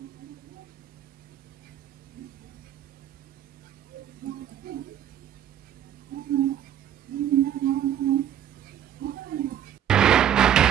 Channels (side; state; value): left; quieter; 10.2 dB